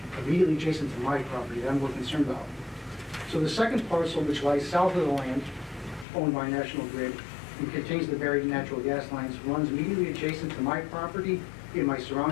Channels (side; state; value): right; drops out; at 6.1 s